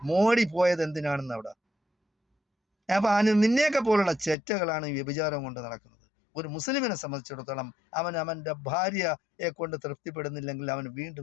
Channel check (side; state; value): right; drops out; at 4.4 s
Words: മോഡി പോയത് എന്തിനാണെന്ന് അവിടെ. അപ്പം നിന്നെയൊക്കെ പോലുള്ള ചെറ്റകളാണ് ഈ വ്യഭിചാരം കൊണ്ട് നടക്കുന്നത്. ഒരു മുസ്ലിമിനെ സംബന്ധിച്ചിടത്തോളം അവൻ്റെ ഭാര്യയെ കൊണ്ട് തൃപ്തിപ്പെടുന്നില്ലെങ്കിൽ അവൻ